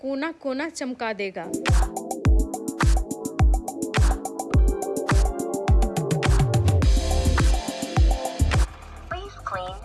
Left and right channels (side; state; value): both; identical; correlation 1.00